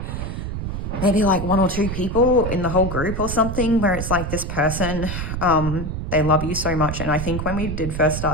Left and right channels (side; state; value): right; noise; rumble, 4 dB below the sound